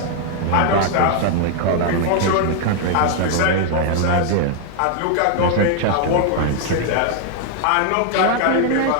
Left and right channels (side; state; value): both; different; correlation 0.00